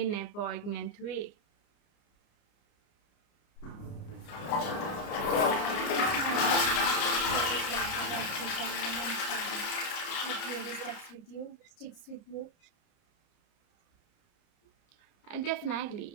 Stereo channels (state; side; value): late; right; 30 ms